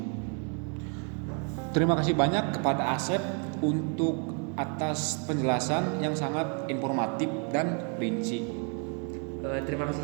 Terima kasih banyak kepada Asep untuk atas penjelasan yang sangat informatif dan rinci. Terima kasih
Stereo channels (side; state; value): left; quieter; 38.6 dB